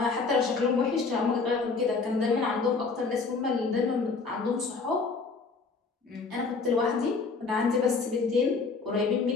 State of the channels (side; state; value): right; quieter; 4.4 dB